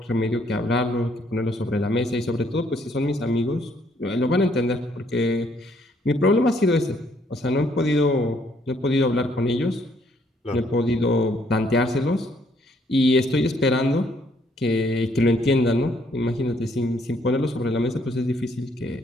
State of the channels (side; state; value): both; normal; correlation 0.68